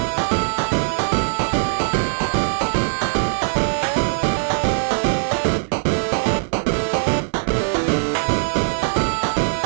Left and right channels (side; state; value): left; silent; digital silence